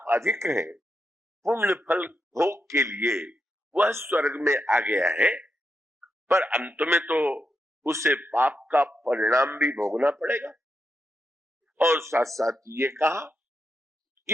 अधिक है, पुण्य फल भोग के लिए वह स्वर्ग में आ गया है, पर अंत में तो उसे पाप का परिणाम भी भोगना पड़ेगा। और साथ साथ ये कहा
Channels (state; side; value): normal; both; correlation 0.85